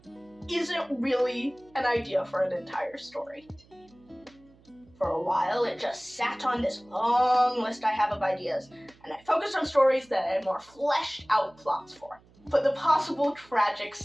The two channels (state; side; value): noise; right; hum, 28 dB below the sound